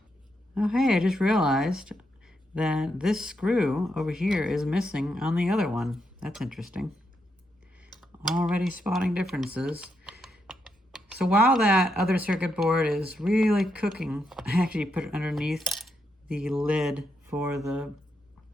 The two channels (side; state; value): both; normal; correlation 0.81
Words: Oh hey, I just realized that this screw over here is missing on the other one. That's interesting. Already spotting differences. So while that other circuit board is really cooking, I actually put it underneath the lid for the